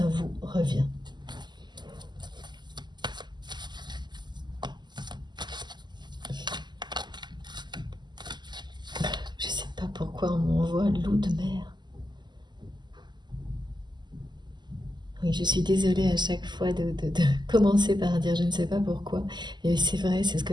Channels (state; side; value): late; left; 0.21 ms